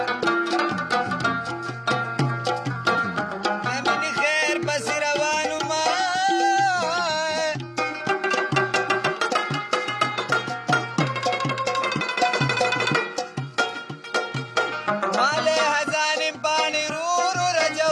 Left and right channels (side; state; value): both; identical; correlation 1.00